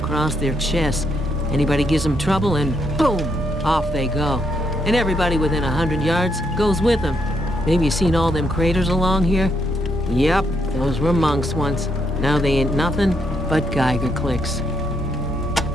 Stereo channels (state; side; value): normal; both; correlation 0.77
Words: their chests. Anybody gives them trouble and boom, off they go. And everybody within 100 yards goes with them. Maybe you seen all them craters along here? Yep, those were monks once. Now they ain't nothing but Geiger clicks.